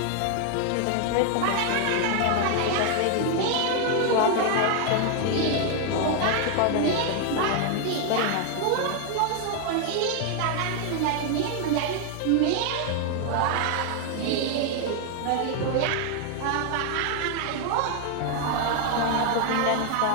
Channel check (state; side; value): different; both; correlation 0.00